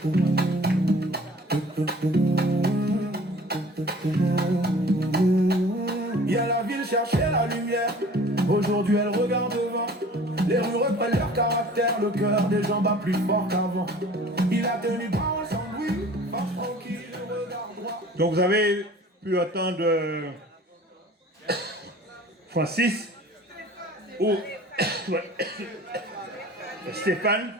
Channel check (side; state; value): both; normal; correlation 0.47